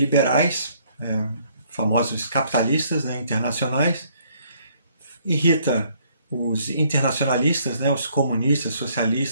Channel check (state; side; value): inverted; both; correlation -0.65